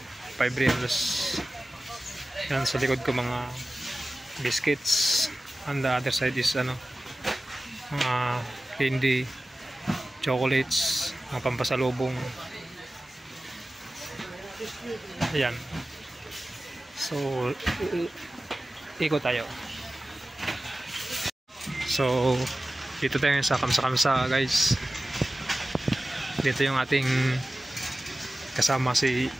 5 reals. Yan sa likod ko mga biscuits, and the other side is mga candy, chocolates, mga pampasalubong. Ayan, so ikot tayo. So dito tayo sa Kamsa guys. Dito yung ating kasama si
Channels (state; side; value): normal; both; correlation 0.96